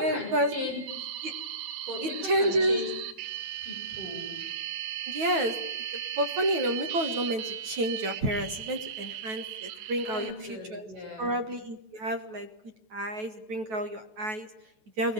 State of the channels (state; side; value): late; left; 9.2 ms